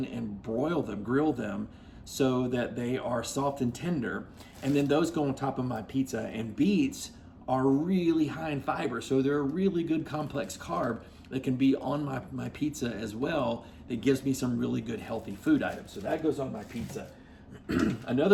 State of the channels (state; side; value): identical; both; correlation 1.00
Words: and broil them, grill them so that they are soft and tender. And then those go on top of my pizza. And beets are really high in fiber, so they're a really good complex carb that can be on my pizza as well. That gives me some really good healthy food items. So that goes on my pizza.